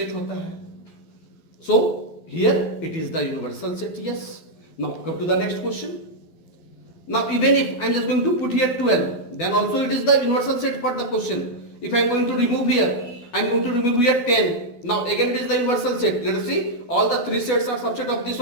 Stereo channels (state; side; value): late; right; 12 ms